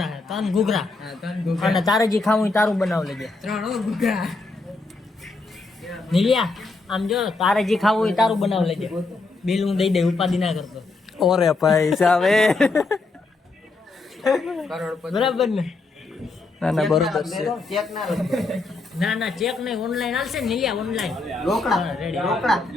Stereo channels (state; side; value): quieter; right; 3.6 dB